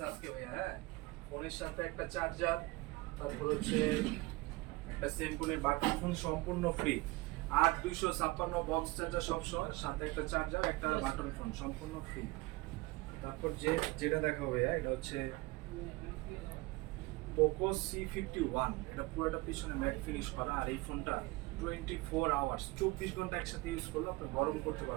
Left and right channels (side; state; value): left; quieter; 21.7 dB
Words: আজকে ভাই। হ্যাঁ, ফোনের সাথে একটা চার্জার, তারপর হচ্ছে একটা সেমফোনের বাটন ফোন সম্পূর্ণ ফ্রি। 8256 বক্স চার্জার সব সহ, সাথে একটা চার্জার, একটা বাটন ফোন সম্পূর্ণ ফ্রি। তারপর যেটা দেখাবো ভাইয়া, এটা হচ্ছে পোকো C51। এটা পুরোটা পিছনে ম্যাট ফিনিশ করা, আর এই ফোনটা 24 আওয়ার্স 24 ঘন্টা একসাথে ইউজ করলে আপনি গরম করতে